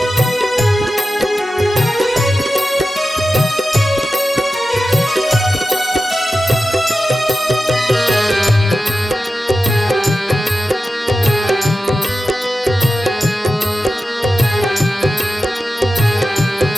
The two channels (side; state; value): both; normal; correlation 0.93